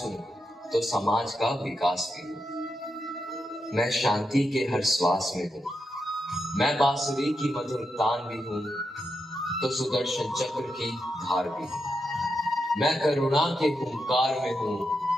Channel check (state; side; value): normal; both; correlation 0.85